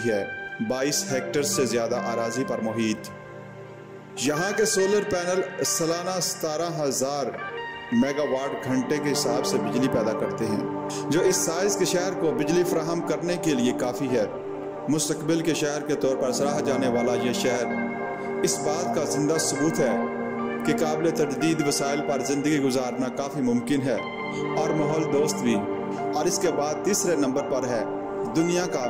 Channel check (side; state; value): both; identical; correlation 1.00